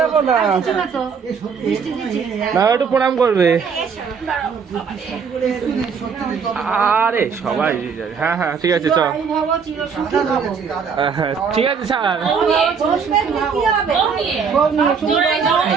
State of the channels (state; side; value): quieter; left; 6.1 dB